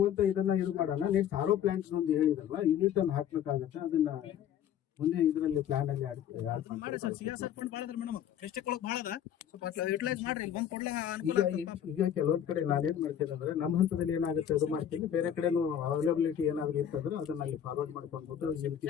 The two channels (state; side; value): quieter; right; 9.7 dB